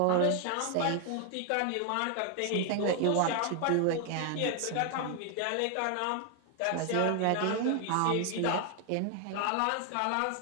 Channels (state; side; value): different; both; correlation 0.00